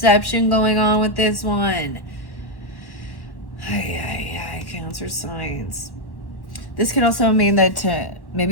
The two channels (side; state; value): right; late; 1.1 ms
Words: going on with this one. Cancer signs. This could also mean that